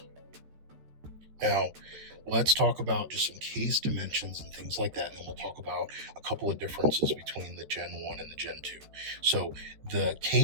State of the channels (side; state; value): left; late; 14 ms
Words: Now, let's talk about just some case dimensions and things like that, and we'll talk about a couple of differences between the Gen 1 and the Gen 2. So the